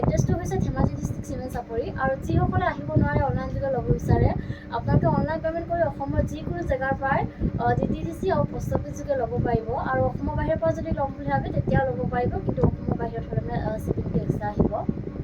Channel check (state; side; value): identical; both; correlation 1.00